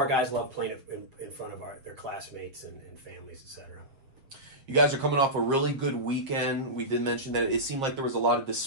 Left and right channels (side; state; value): left; late; 7.5 ms